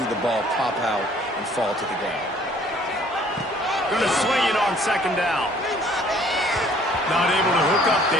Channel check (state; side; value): normal; both; correlation 0.57